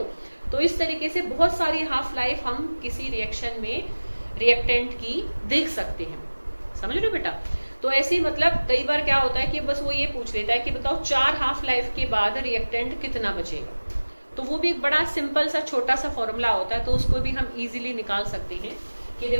तो इस तरीके से बहुत सारी हाफ लाइफ हम किसी रिएक्शन में रिएक्टेंट की देख सकते हैं। समझ रहे हो बेटा? तो ऐसे मतलब कई बार क्या होता है कि बस वो ये पूछ लेता है कि बताओ 4 हाफ लाइफ के बाद रिएक्टेंट कितना बचेगा, तो वो भी एक बड़ा सिंपल सा छोटा सा फॉर्मूला होता है, तो उसको भी हम इजीली निकाल सकते हैं कि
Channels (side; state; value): both; inverted; correlation -1.00